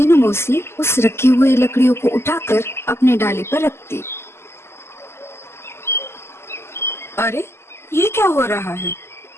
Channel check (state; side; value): late; right; 0.12 ms